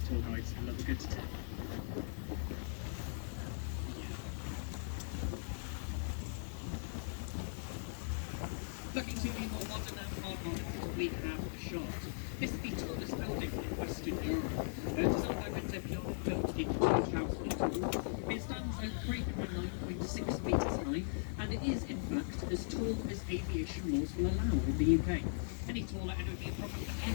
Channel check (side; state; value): right; silent; digital silence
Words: tour guides and love a good tip. Looking to the more modern and hard modern, we have the Shard. This is the tallest building in Western Europe. Designed by Windsor Piano, built in 2002. It stands at 309.6 metres high, and it is in fact as tall as aviation laws will allow in the UK. Any taller and it would be a problem for